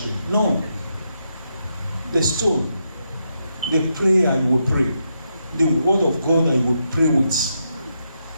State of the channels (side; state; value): both; inverted; correlation -0.82